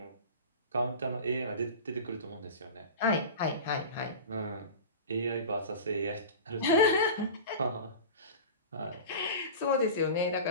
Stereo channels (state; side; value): inverted; both; correlation -0.32